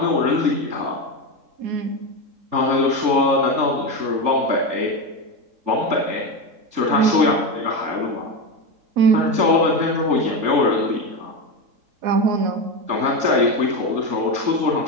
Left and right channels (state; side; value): late; left; 3.5 ms